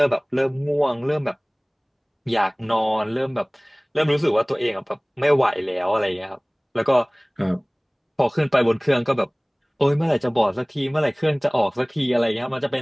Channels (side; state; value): both; identical; correlation 1.00